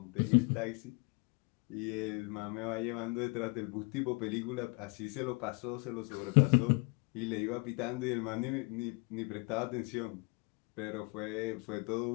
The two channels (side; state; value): right; quieter; 30.1 dB